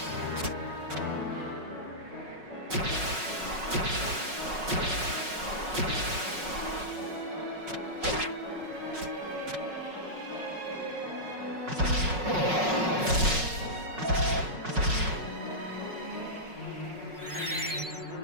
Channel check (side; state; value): left; late; 5.4 ms